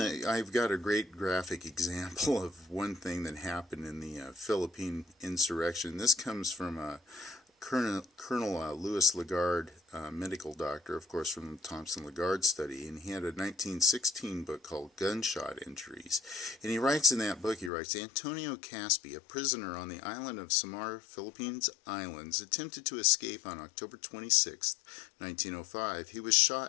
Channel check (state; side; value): drops out; right; at 17.7 s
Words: got a great graphic example of one thing that happened in the Philippine Insurection. This comes from Colonel Louis Lagarde, medical doctor, of course, from the Thompson Lagarde study, and he had a 1916 book called Gunshot Injuries. And he writes in that book, Antonio Caspi, a prisoner on the island of Samar, Philippines Islands, attempted to escape on October 26, 1905. He was